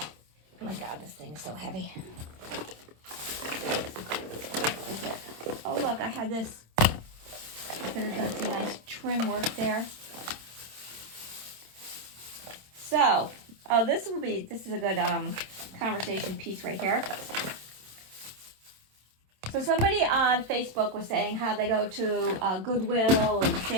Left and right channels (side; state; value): left; late; 27 ms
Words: Oh my God, this thing is so heavy. Is it? Oh look, I had this. I could have done some nice trim work there. So, oh, this is a good conversation piece right here. So somebody on Facebook was saying how they go to Goodwill and